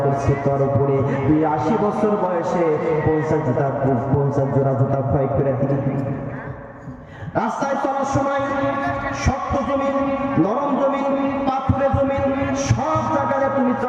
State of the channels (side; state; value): both; identical; correlation 1.00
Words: করছি তোর উপরে। তুই 80 বছর বয়সে 50 জোড়া জুতা ক্ষয় করে দিলি। রাস্তায় চলার সময় শক্ত জমিন, নরম জমিন, পাথুরে জমিন, সব জায়গায় তুমি